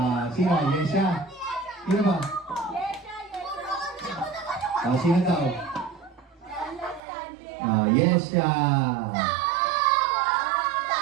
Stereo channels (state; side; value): drops out; left; at 7.0 s